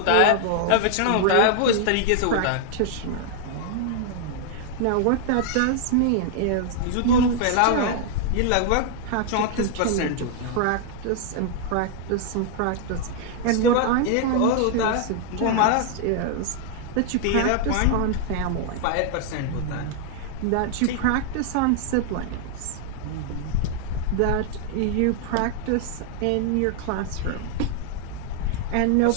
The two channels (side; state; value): both; different; correlation 0.00